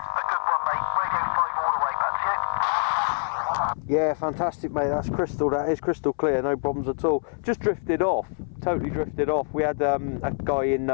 a good one, mate. Radio 5 all the way, back to you. Yeah, fantastic, mate. That's crystal. That is crystal clear. No problems at all. Just drifted off. Totally drifted off. We had a guy in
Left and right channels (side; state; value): right; silent; 61 dB below the other